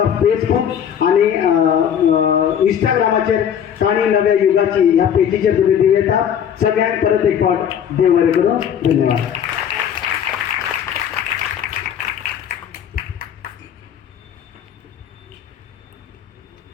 फेसबूक आनी इंस्टाग्रामाचेर काणी नव्या युगाची ह्या पेजीचेर तुमी दिवयता. सगळ्यांक परत एक फावट देव बरें करूं. धन्यवाद.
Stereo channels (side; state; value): right; quieter; 8.7 dB